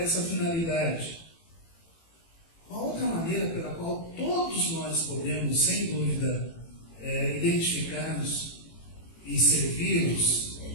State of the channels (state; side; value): late; right; 18 ms